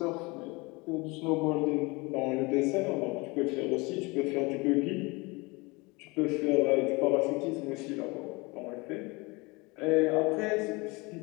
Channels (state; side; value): quieter; right; 25.8 dB